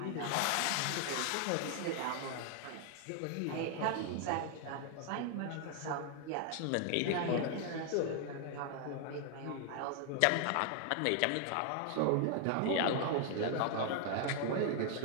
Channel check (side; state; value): both; different; correlation 0.00